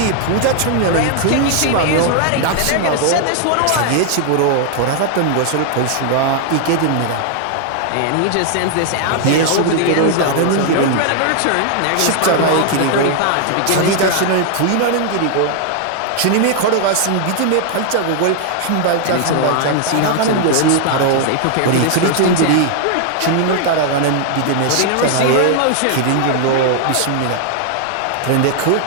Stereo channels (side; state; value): both; different; correlation 0.00